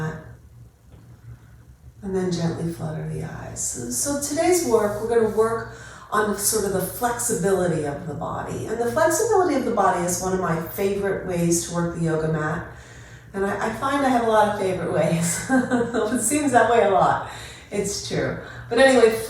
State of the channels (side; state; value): both; identical; correlation 1.00